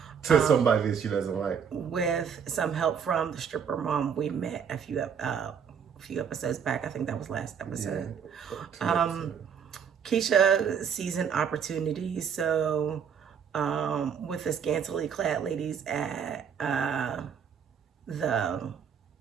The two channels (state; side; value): quieter; left; 7.3 dB